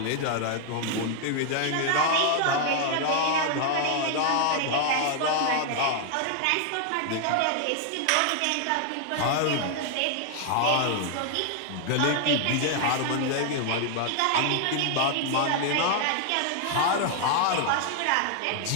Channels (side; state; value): both; different; correlation 0.00